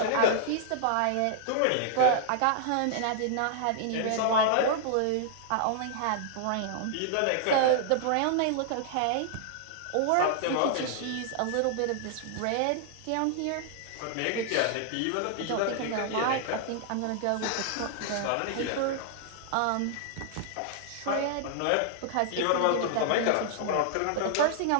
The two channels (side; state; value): both; different; correlation -0.01